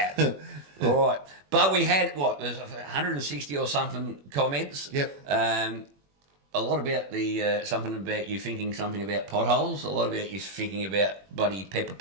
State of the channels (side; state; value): left; late; 21 ms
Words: All right. But we had, there's 160 or something comments. Yep. A lot about something about you thinking something about potholes, a lot about you thinking about bloody pepper